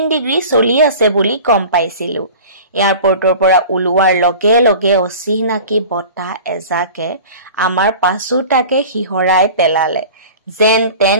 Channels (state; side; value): inverted; both; correlation -0.39